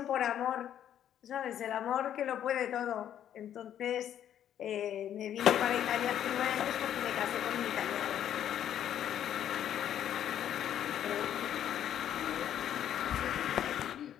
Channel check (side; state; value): right; quieter; 10.4 dB